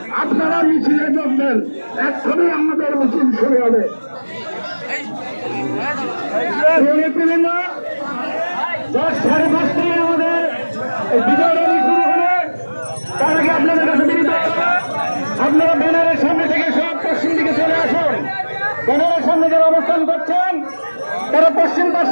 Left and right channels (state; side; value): inverted; both; correlation -1.00